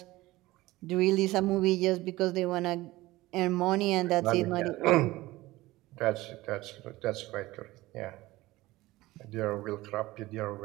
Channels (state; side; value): quieter; left; 18.6 dB